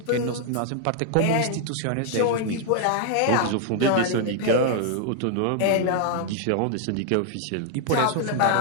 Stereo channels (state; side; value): different; both; correlation 0.00